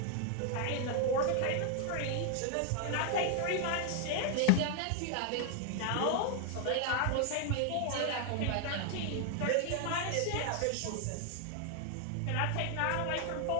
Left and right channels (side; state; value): both; different; correlation 0.00